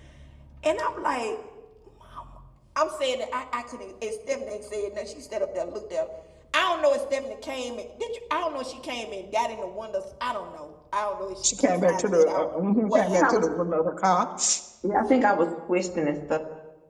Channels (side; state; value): both; identical; correlation 1.00